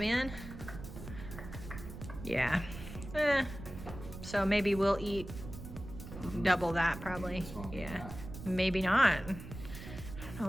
Yeah. So maybe we'll eat double that probably. Yeah. Maybe not. I don't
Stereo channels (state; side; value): noise; right; rumble, 11 dB below the sound